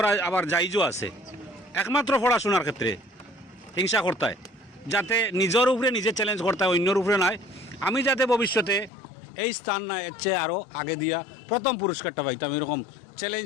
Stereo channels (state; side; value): drops out; right; at 8.9 s